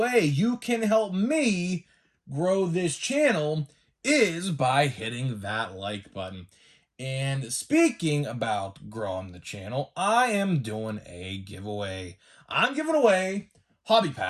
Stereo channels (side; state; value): both; identical; correlation 1.00